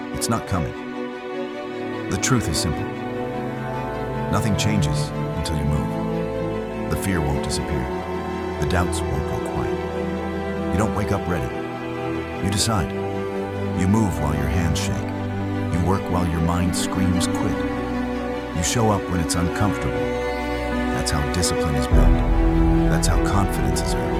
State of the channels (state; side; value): identical; both; correlation 1.00